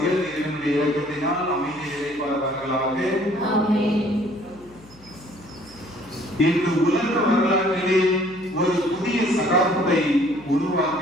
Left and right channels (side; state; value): left; noise; hum, 24 dB below the sound